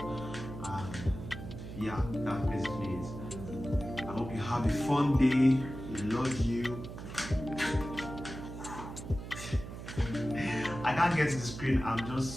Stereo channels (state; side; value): noise; right; hum, 10 dB below the sound